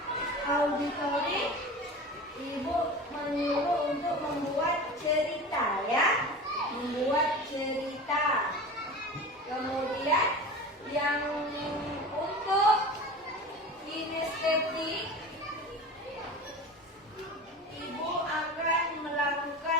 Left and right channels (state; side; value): normal; both; correlation 0.33